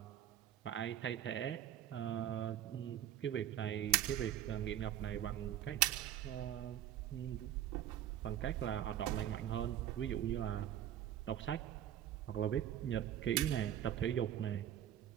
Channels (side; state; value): left; quieter; 11.3 dB